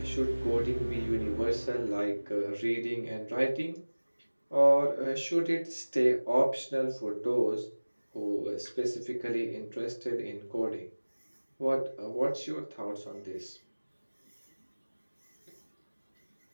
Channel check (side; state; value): both; inverted; correlation -1.00